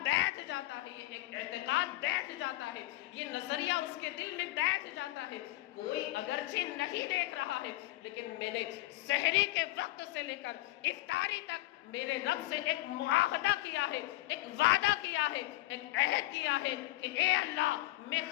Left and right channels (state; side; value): quieter; right; 18.0 dB